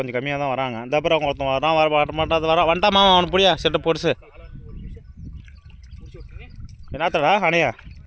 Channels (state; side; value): identical; both; correlation 1.00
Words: கம்மியாக தான் வராங்க. இந்த அப்புறம் அவங்க ஒருத்தன் வரான், வர மாட்டாது வரான். வந்துட்டா மாமா அவனை புடியா செட்டை போடுச்சு. என்னத்தடா அணையா